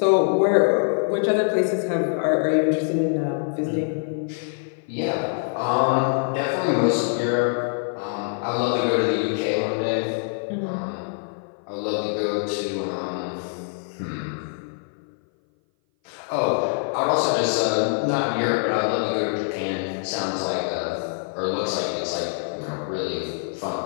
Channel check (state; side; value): silent; right; 58 dB below the other